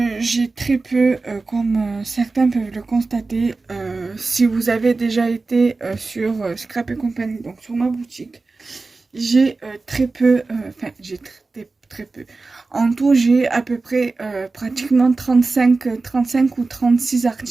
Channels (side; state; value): left; quieter; 3.7 dB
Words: j'ai très peu, comme certains peuvent le constater, si vous avez déjà été sur Scrap et compagnie, donc sur ma boutique. J'ai très peu, enfin j'ai très peu. En tout, j'ai à peu près pratiquement 35 ou 36